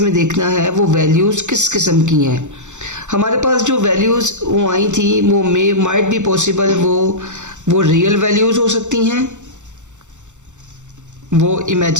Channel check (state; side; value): late; left; 0.85 ms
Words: में देखना है वो वैल्यूज़ किस किस्म की हैं। हमारे पास जो वैल्यूज़ वो आई थी वो मे माइट बी पॉसिबल वो रियल वैल्यूज़ हो सकती हैं, वो